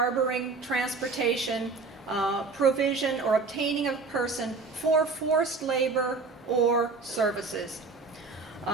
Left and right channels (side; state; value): left; quieter; 4.2 dB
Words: transportation, provision, or obtaining a person for forced labor or services.